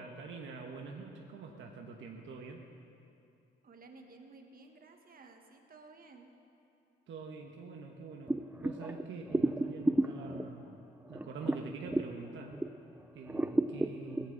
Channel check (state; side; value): normal; both; correlation 0.91